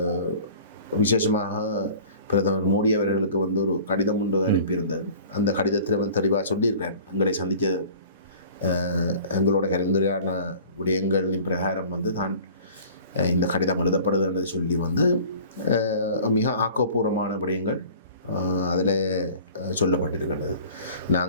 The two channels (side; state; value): both; inverted; correlation -0.45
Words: விசேஷமாக பிரதமர் மோடி அவர்களுக்கு வந்து ஒரு கடிதம் ஒன்று அனுப்பியிருந்தார். அந்த கடிதத்தில் வந்து தெளிவாக சொல்லியிருக்கிறேன், எங்களை சந்தித்த எங்களோட கலந்துரையான விடயங்களின் பிரகாரம் வந்து தான் இந்த கடிதம் எழுதப்படுதுன்றது சொல்லி வந்து மிக ஆக்கப்பூர்வமான விடயங்கள் அதில் சொல்லப்பட்டிருக்கின்றது.